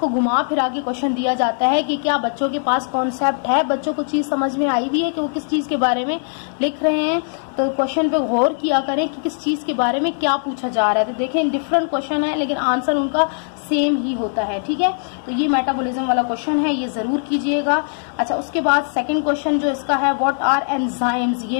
घुमा फिरा के क्वेश्चन दिया जाता है कि क्या बच्चों के पास कॉन्सेप्ट है, बच्चों को चीज समझ में आई भी है कि वो किस चीज के बारे में लिख रहे हैं। तो क्वेश्चन पे गौर किया करें कि किस चीज के बारे में क्या पूछा जा रहा है। तो देखें डिफरेंट क्वेश्चन है लेकिन आंसर उनका सेम ही होता है, ठीक है। तो ये मेटाबॉलिज्म वाला क्वेश्चन है, ये जरूर कीजिएगा। अच्छा, उसके बाद सेकंड क्वेश्चन जो इसका है, व्हाट आर एंजाइम्स,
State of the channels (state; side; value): silent; right; digital silence